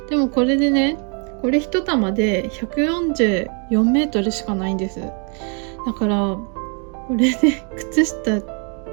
でもこれでね、これ一玉で144メートルしかないんです。だからこれで靴下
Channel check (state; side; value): quieter; left; 38.8 dB